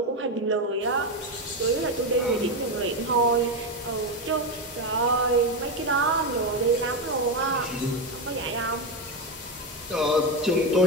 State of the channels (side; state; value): both; normal; correlation 0.11